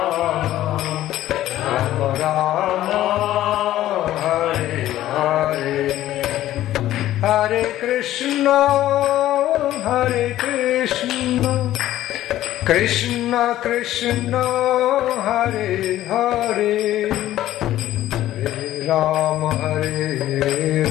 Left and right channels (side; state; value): right; quieter; 13.8 dB